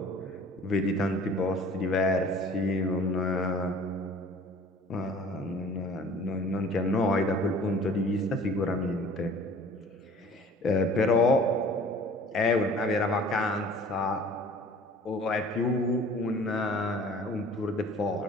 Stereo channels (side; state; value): both; normal; correlation 0.48